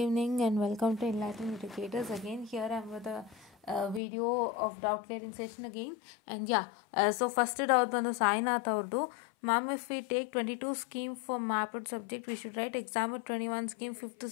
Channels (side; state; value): right; drops out; at 4.0 s